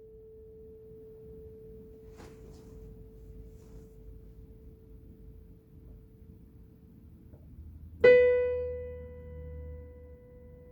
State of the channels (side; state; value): both; identical; correlation 1.00